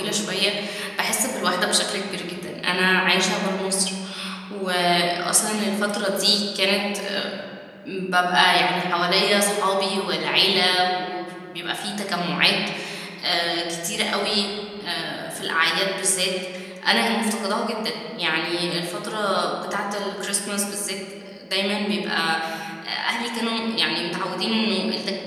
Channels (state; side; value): identical; both; correlation 1.00